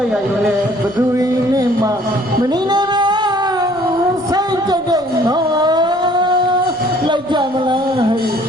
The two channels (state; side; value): noise; left; rumble, 29 dB below the sound